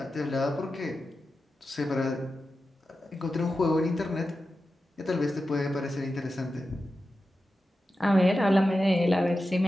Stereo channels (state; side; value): normal; both; correlation 0.92